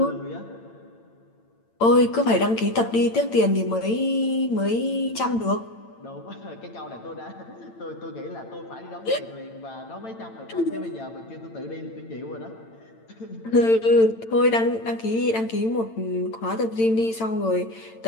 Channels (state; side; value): late; right; 8.9 ms